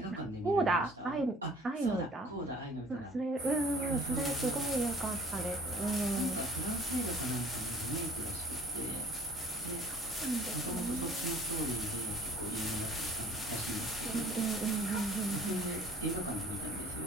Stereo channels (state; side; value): normal; both; correlation 0.52